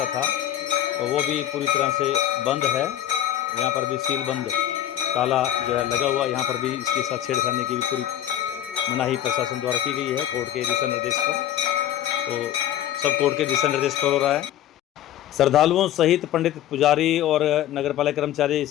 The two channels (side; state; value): right; quieter; 11.8 dB